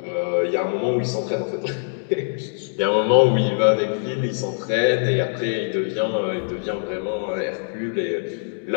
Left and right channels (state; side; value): silent; right; digital silence